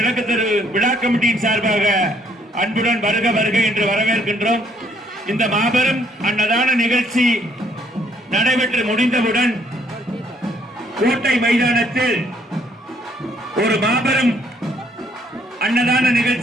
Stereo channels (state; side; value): normal; both; correlation 0.67